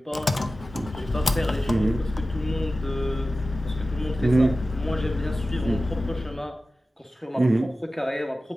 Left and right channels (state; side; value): normal; both; correlation 0.95